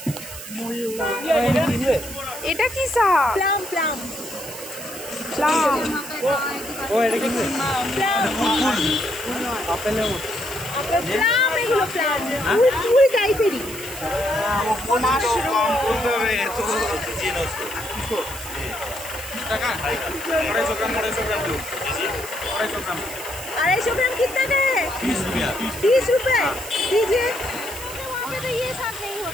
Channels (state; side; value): noise; right; hiss, 11 dB below the sound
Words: এটা কি শাক? প্লাম। ও এটা কি? আপেলের মতো। প্লাম, এগুলো প্লাম। ফুল টাইপেরই। টাকা 250 গ্রাম 250 ग्राम कितना का है? 30 रुपये दीजिए। वहाँ पे तो ये साग नहीं